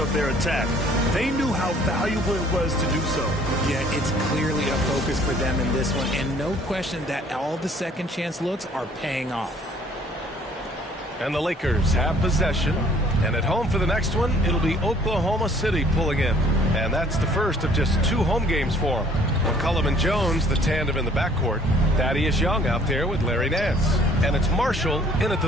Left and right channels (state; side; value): normal; both; correlation 0.58